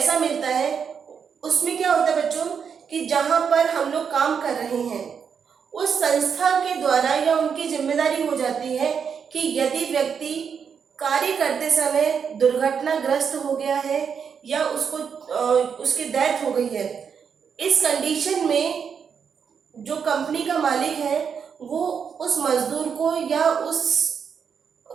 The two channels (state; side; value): quieter; left; 6.8 dB